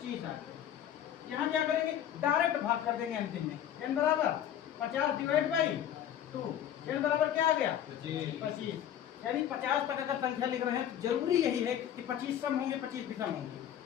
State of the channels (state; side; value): quieter; right; 10.4 dB